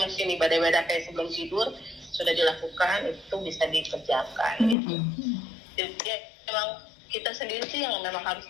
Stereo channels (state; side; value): drops out; right; at 4.8 s